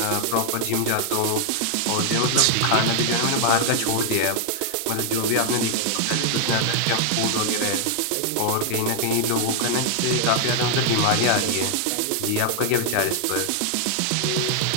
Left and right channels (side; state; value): both; different; correlation 0.00